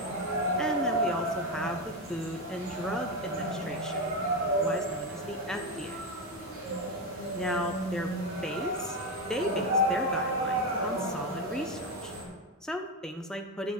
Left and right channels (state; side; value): normal; both; correlation 0.12